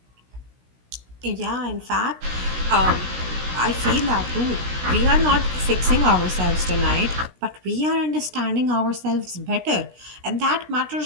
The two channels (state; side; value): late; left; 16 ms